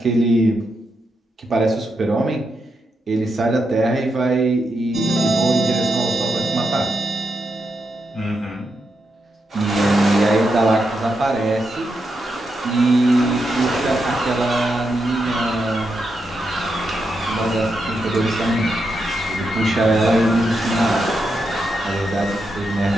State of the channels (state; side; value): normal; both; correlation 0.84